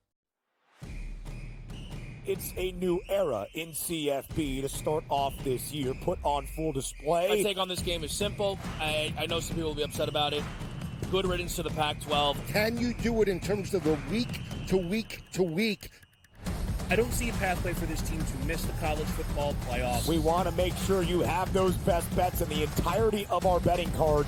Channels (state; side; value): identical; both; correlation 1.00